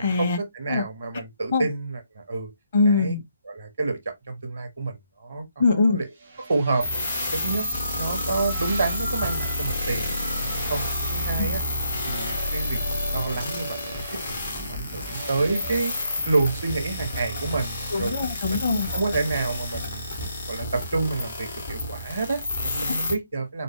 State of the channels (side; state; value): both; inverted; correlation -0.75